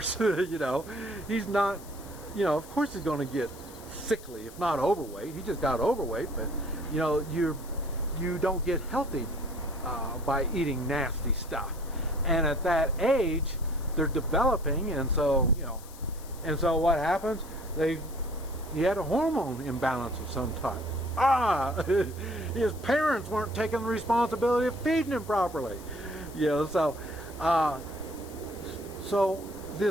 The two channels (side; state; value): left; noise; hiss, 19 dB below the sound